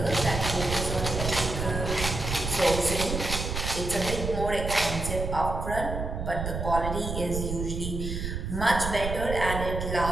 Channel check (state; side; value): noise; right; rumble, 4 dB below the sound